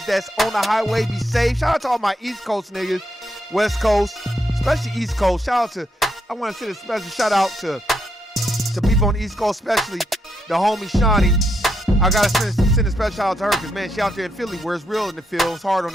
that's on the highway. Be safe. Shout out to all my East Coast niggas, West Coast, especially East Coast. I want to send a special shout out to people on the East Coast, especially the homie Shawnee. I got to send a special shout out to her because, man, she out there in Philly where it's real in the field. It's hard on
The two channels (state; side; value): normal; both; correlation 0.79